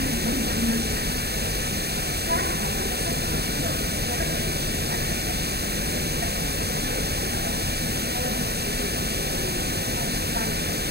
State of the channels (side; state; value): left; late; 0.47 ms